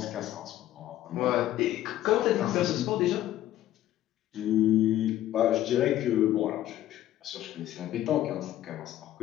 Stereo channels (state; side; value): quieter; right; 13.3 dB